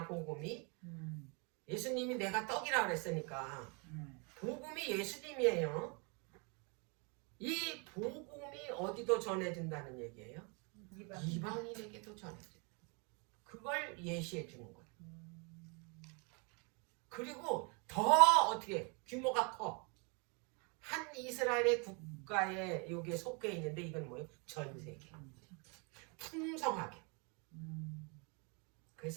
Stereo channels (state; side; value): quieter; left; 33.7 dB